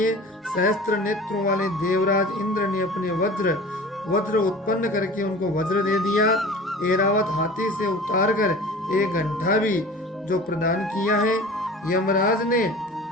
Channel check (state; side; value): normal; both; correlation 0.40